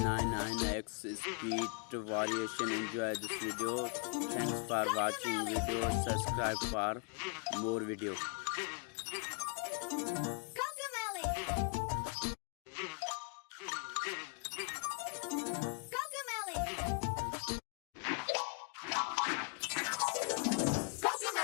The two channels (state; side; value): quieter; right; 37.4 dB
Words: speed variation. Enjoy this video. Thanks for watching video. Subscribe for more video.